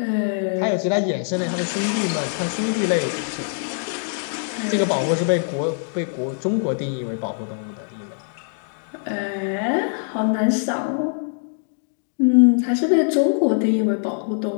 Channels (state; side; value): silent; right; digital silence